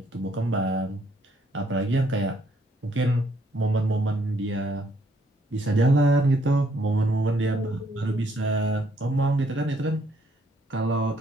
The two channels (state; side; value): normal; both; correlation 0.69